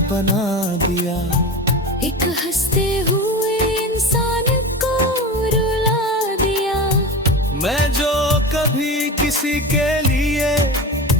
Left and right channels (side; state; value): both; normal; correlation 0.27